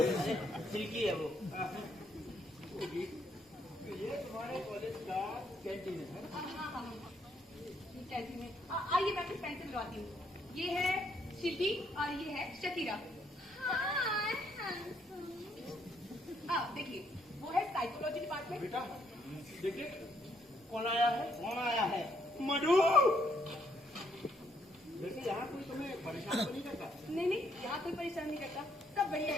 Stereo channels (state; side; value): normal; both; correlation 0.71